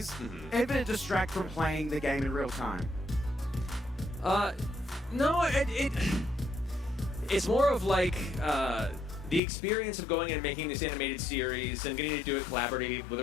ever distract from playing the game in real time? No, it's more of like the experience of going and making this animated series and getting to do it collaboratively with the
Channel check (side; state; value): right; drops out; at 9.4 s